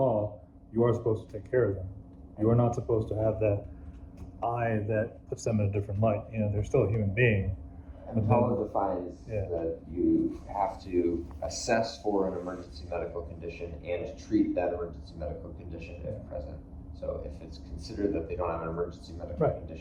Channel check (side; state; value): both; identical; correlation 1.00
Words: you are supposed to take care of them. You are not supposed to have that eye that puts them in a different light. They're still a human being. And the law defines that you have to assess for an emergency medical condition and treat that emergency medical condition if present. So if it's considered that they don't have an emergency medical Right.